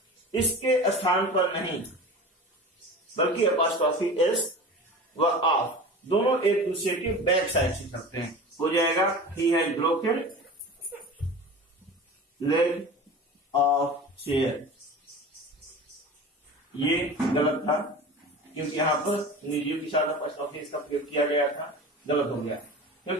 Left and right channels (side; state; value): both; normal; correlation 0.34